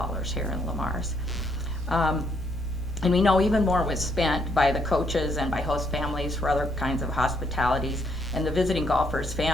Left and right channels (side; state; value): both; normal; correlation 0.71